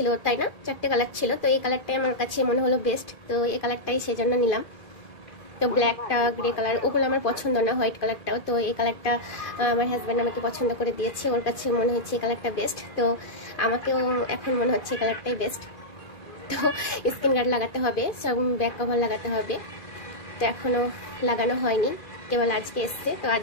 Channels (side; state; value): right; late; 2.5 ms